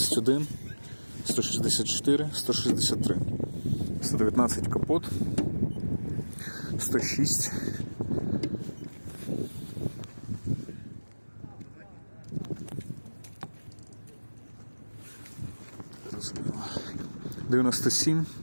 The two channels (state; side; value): inverted; both; correlation -1.00